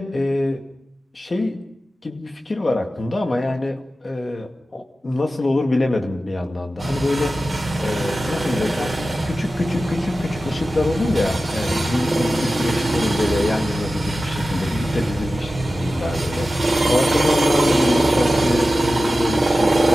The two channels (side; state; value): both; normal; correlation 0.94